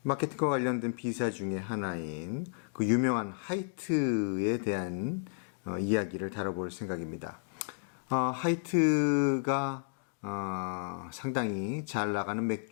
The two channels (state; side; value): silent; right; digital silence